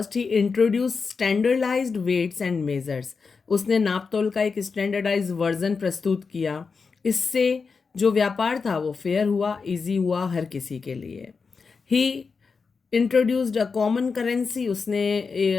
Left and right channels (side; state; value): right; quieter; 5.0 dB